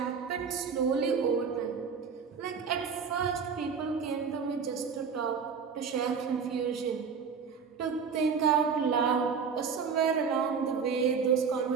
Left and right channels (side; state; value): left; quieter; 6.1 dB